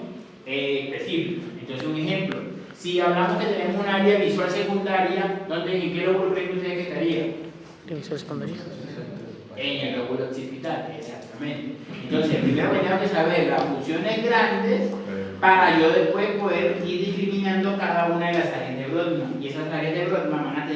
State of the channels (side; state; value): both; identical; correlation 1.00